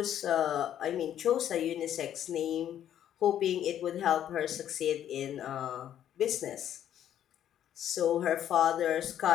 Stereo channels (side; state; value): right; quieter; 10.6 dB